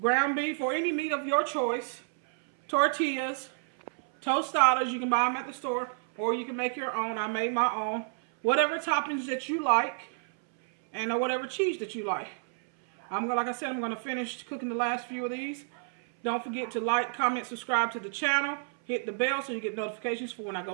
beef or any meat of your choice. Tortillas. Tostadas. You can buy them at the store. Or you can make your own. I made my own. Whatever toppings that you like. And whatever cheese that you like. Like I said, I'm going to finish cooking the last few of these. Don't forget to like, comment, subscribe to the channel. Hit the bell so you get notifications for when I go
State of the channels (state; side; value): silent; left; 58 dB below the other